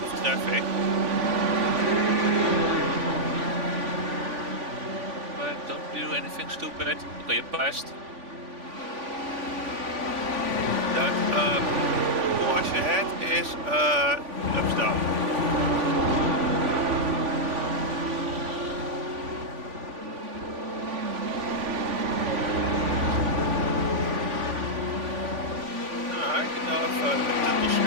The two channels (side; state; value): left; late; 3.5 ms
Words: traffic. But don't do anything stupid. Okay, you passed. That Porsche ahead is laps down.